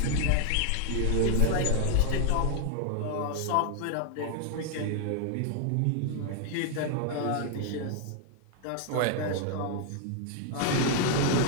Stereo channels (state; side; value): different; both; correlation 0.00